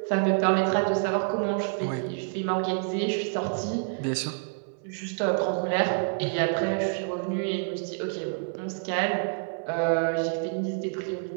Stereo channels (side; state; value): left; silent; 59 dB below the other